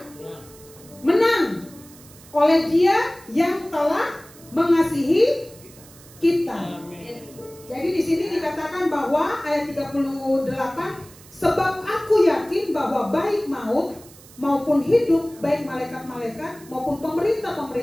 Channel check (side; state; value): right; noise; hiss, 22 dB below the sound